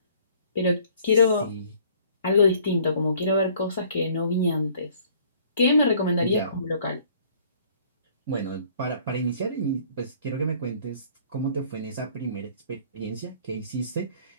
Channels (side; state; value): both; inverted; correlation -0.57